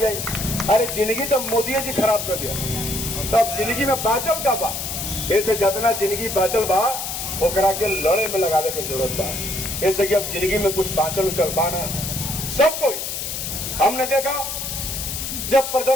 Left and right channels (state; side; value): noise; left; hiss, 4 dB below the sound